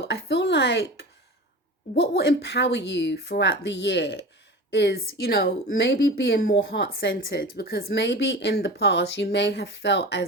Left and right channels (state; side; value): normal; both; correlation 0.32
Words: I feel like what will empower you throughout the year is, maybe being more heart-centered, because maybe in the past you may have felt